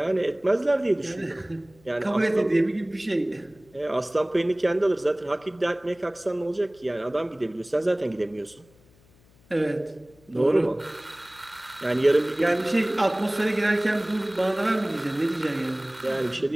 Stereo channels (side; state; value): left; noise; hum, 30 dB below the sound